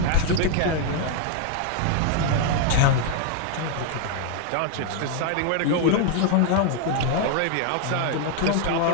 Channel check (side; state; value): both; different; correlation 0.00